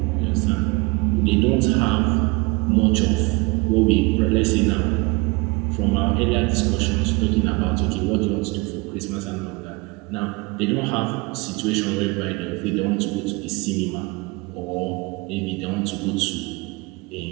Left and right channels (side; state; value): left; quieter; 26.2 dB